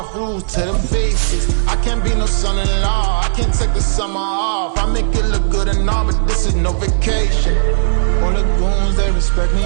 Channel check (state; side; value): silent; left; digital silence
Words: Rules to the basics. I can't be no son-in-law. I can't take the summer off. I make it look good and all, but this is no vacation. All the goons, they respect me